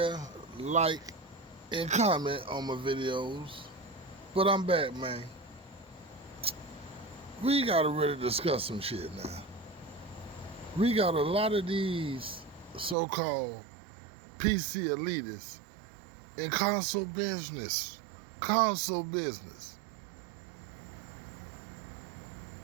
like, and comment on my videos. But I'm back, man. We gotta really discuss some shit now. We got a lot of these so-called PC elitists in console business. Console business.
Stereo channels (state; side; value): drops out; left; at 13.0 s